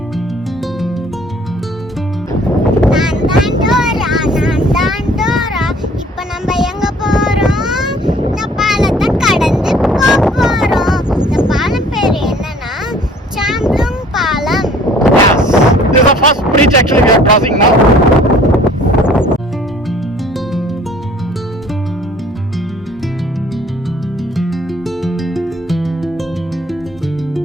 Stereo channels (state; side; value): normal; both; correlation 0.54